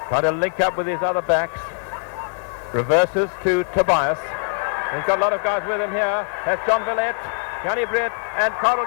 trying to link up with his other backs. Reverses to Tobias. He's got a lot of guys with him here. That's John Villette, Yanni Brett, and Carl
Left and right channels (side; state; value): right; silent; 62 dB below the other